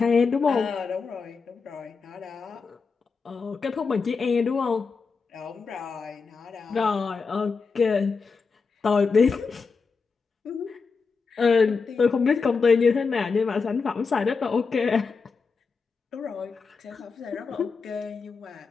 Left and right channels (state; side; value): quieter; right; 4.9 dB